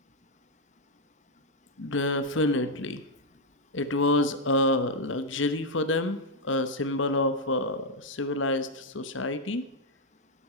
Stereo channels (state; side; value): normal; both; correlation -0.01